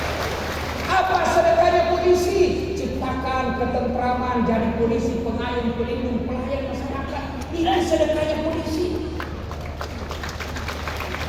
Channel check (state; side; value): identical; both; correlation 1.00